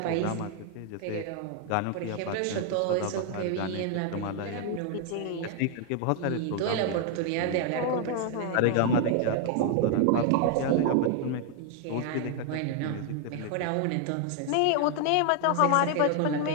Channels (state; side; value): different; both; correlation 0.00